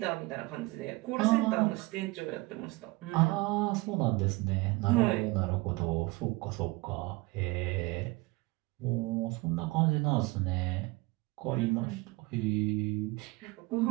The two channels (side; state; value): left; quieter; 22.9 dB